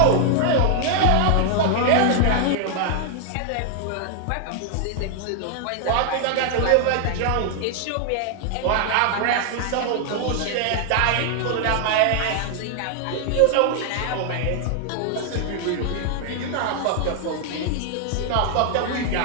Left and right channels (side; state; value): both; different; correlation 0.00